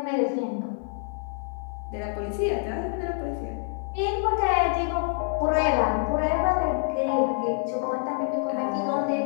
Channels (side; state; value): right; silent; 60 dB below the other